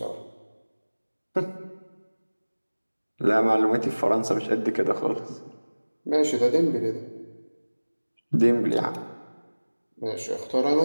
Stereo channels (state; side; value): inverted; both; correlation -1.00